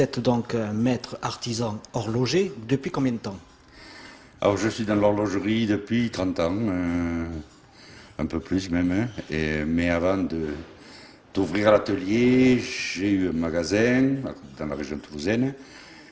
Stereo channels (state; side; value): identical; both; correlation 1.00